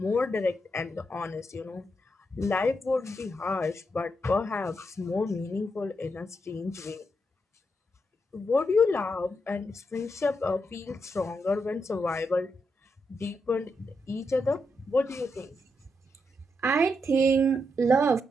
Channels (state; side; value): normal; both; correlation 0.82